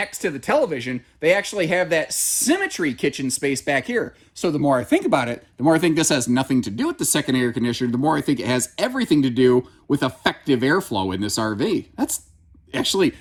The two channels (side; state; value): both; identical; correlation 1.00